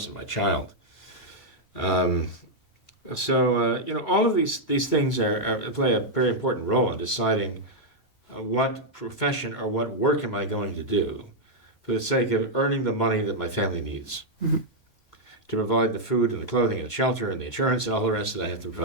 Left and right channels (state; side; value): normal; both; correlation -0.03